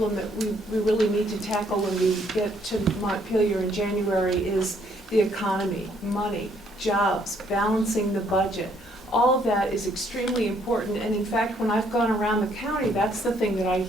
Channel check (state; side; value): normal; both; correlation 0.67